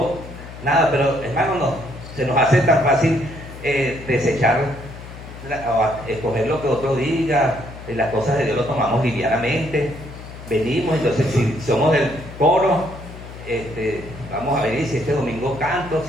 nada. Pero hermano, no, se nos hace tan fácil desechar o escoger lo que otro diga. Las cosas de Dios lo tomamos livianamente. Venimos, entonces si somos del coro, vamos a venir, si este domingo canto,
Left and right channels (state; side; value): noise; left; hum, 14 dB below the sound